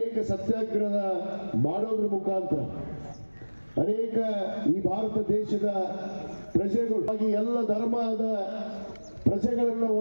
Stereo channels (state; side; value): inverted; both; correlation -1.00